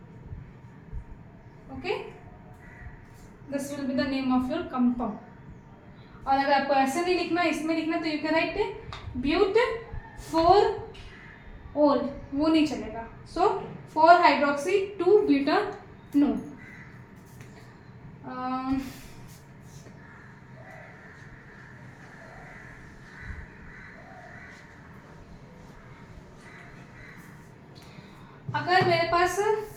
Okay, this will be the name of your compound. और अगर आपको ऐसे नहीं लिखना, इसमें लिखना, तो यू कैन राइट ब्यूट 4 ओल, वो नहीं चलेगा। सो 4 हाइड्रोक्सी 2 ब्यूटानोन। अगर मेरे पास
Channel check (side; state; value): both; identical; correlation 1.00